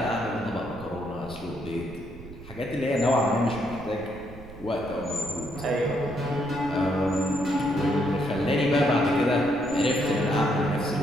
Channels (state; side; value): noise; right; rumble, 16 dB below the sound